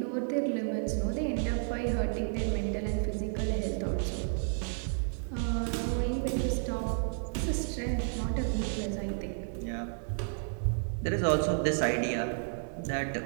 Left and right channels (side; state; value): left; silent; digital silence